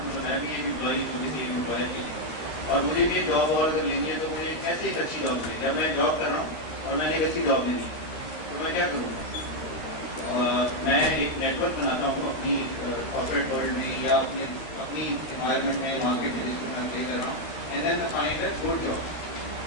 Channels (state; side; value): late; right; 13 ms